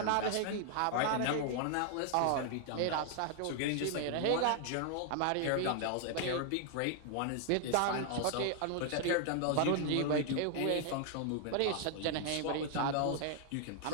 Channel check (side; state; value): both; different; correlation 0.00